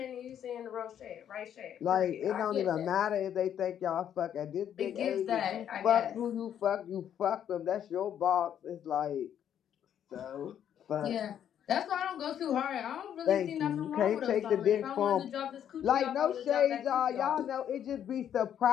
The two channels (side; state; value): right; quieter; 9.6 dB